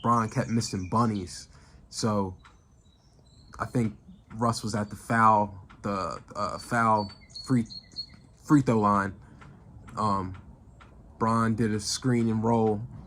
Bron kept missing bunnies. So I think Russ was at the foul free throw line. Bron did a screen and roll.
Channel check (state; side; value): identical; both; correlation 1.00